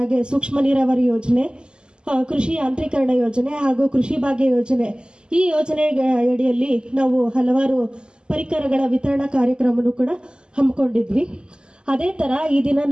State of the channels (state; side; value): late; left; 0.048 ms